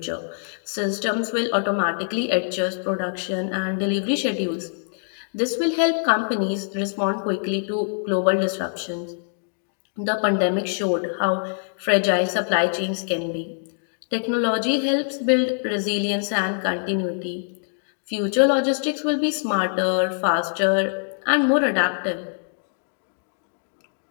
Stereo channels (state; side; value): silent; right; digital silence